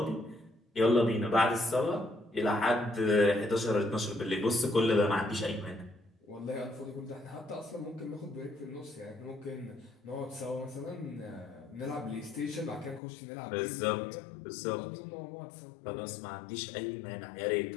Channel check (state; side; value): drops out; right; at 13.0 s